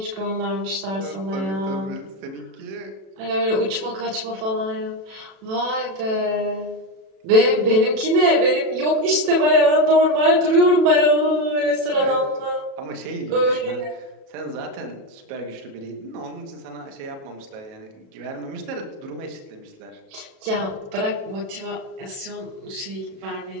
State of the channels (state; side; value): late; left; 36 ms